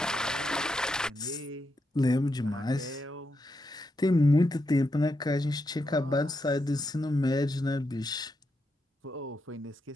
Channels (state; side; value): normal; both; correlation 0.84